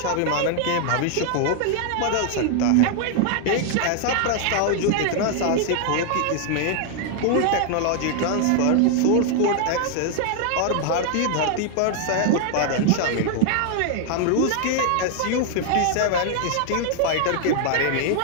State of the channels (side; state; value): both; different; correlation 0.00